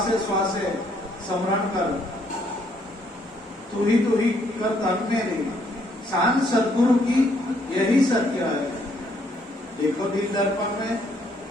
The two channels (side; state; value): both; normal; correlation 0.69